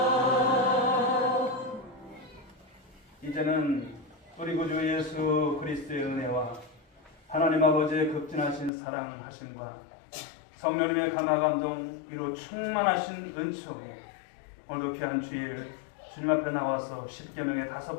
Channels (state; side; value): drops out; right; at 8.7 s